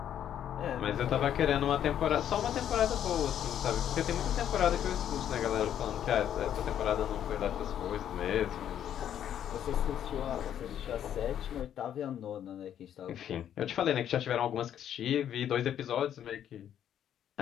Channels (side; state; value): right; quieter; 10.1 dB